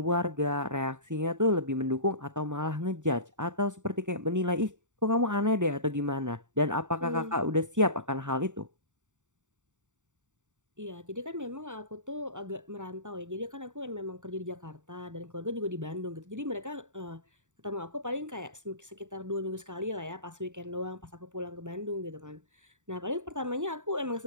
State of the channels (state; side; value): late; left; 0.86 ms